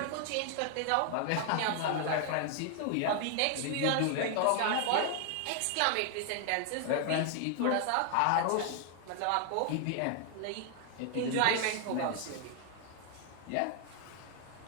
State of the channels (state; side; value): different; both; correlation 0.00